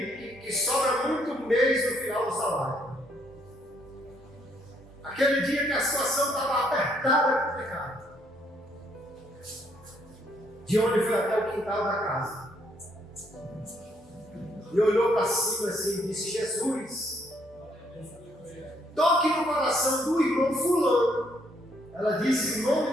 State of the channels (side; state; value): both; normal; correlation 0.69